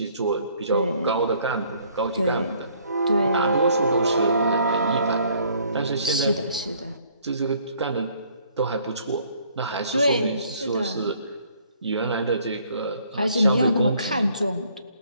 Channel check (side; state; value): both; inverted; correlation -0.61